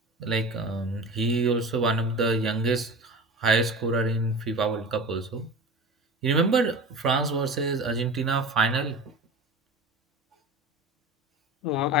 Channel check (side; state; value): both; normal; correlation 0.32